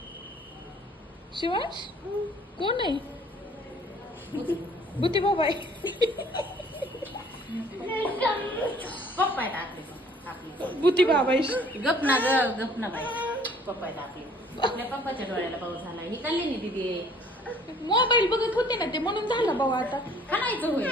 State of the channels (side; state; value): both; normal; correlation 0.56